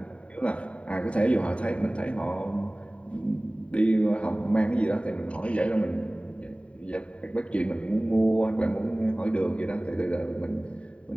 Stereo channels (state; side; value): late; right; 0.061 ms